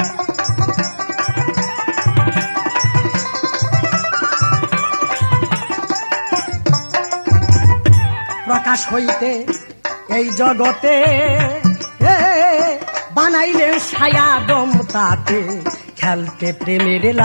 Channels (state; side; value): inverted; both; correlation -1.00